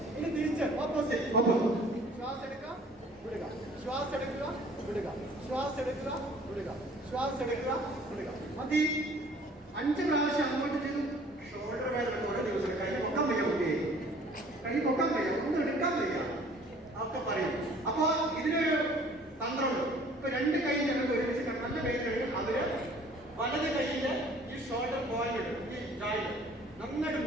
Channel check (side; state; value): both; normal; correlation 0.53